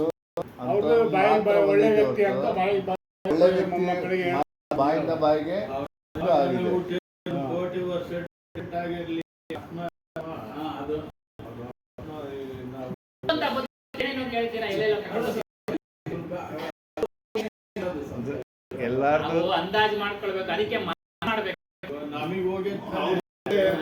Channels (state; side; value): identical; both; correlation 1.00